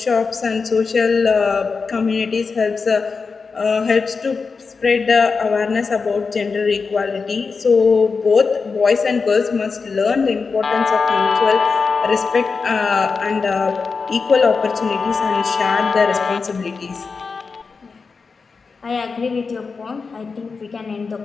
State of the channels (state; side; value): quieter; right; 4.8 dB